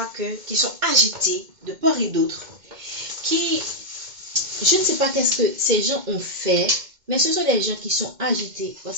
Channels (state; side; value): late; left; 2.1 ms